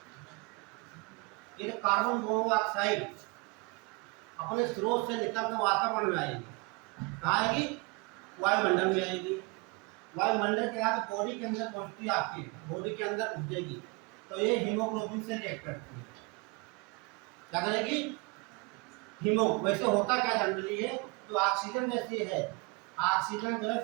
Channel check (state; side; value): quieter; left; 28.3 dB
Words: ये कार्बन मोनोऑक्साइड अपने स्रोत से निकलकर वातावरण में आएगी। कहाँ आएगी? वायुमंडल में आएगी। वायुमंडल के बाद बॉडी के अंदर पहुंचती है, आपकी बॉडी के अंदर पहुंचेगी तो ये हीमोग्लोबिन से रिएक्ट करती है। क्या करेगी? हीमो। वैसे होता क्या जनरली है, जो ऑक्सीजन जैसी है, ऑक्सीजन